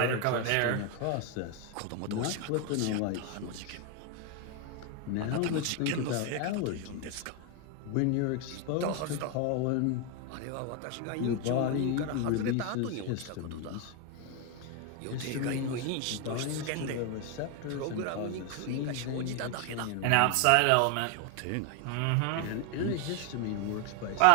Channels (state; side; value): different; both; correlation 0.01